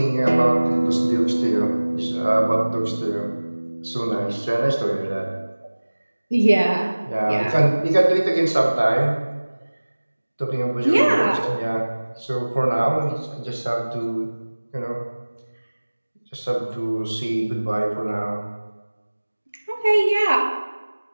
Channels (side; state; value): both; inverted; correlation -1.00